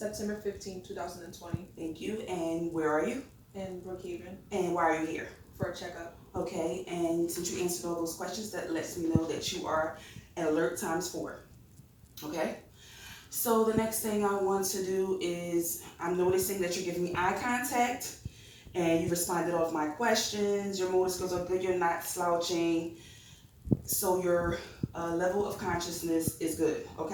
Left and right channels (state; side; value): identical; both; correlation 1.00